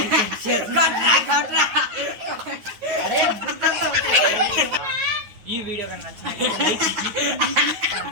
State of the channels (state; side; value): late; left; 9.4 ms